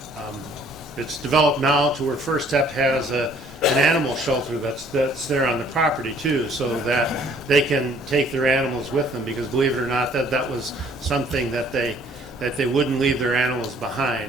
It's developed now to where First Step has an animal shelter that's there on the property too, so that they can take their animals with them, because believe it or not, that was something that they wouldn't leave their animals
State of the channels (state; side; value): normal; both; correlation 0.58